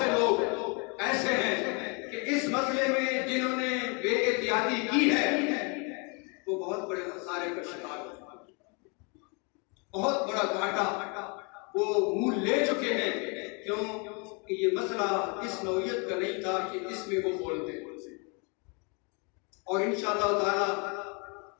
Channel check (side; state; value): right; quieter; 33.3 dB